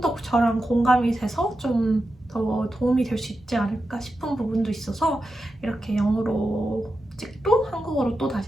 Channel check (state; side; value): normal; both; correlation 0.90